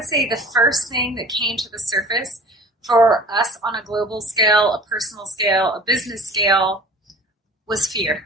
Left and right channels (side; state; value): both; normal; correlation 0.43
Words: say the first thing that came to the surface for us on a global scale, a personal scale, a business scale, was